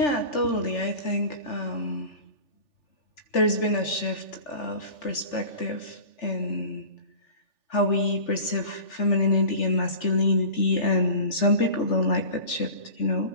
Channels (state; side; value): late; right; 3.4 ms